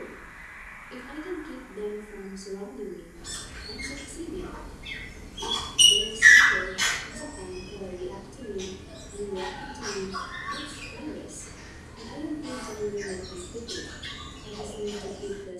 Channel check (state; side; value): identical; both; correlation 1.00